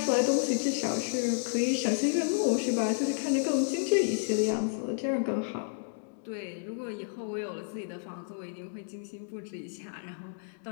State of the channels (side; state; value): right; silent; digital silence